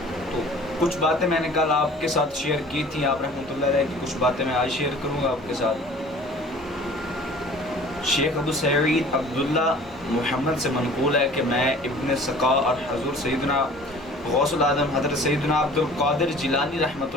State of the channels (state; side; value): normal; both; correlation 0.47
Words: تو کچھ باتیں میں نے کل آپ کے ساتھ شیئر کی تھیں آپ رحمۃ اللہ علیہ کی، کچھ باتیں میں آج شیئر کروں گا آپ کے ساتھ۔ شیخ ابو سعید عبداللہ محمد سے منقول ہے کہ میں ابن سقا اور حضور سیدنا غوث العظم حضرت سیدنا عبد القادر جیلانی رحمۃ